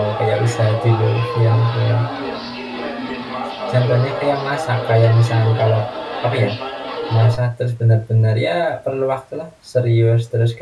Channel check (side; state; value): both; identical; correlation 1.00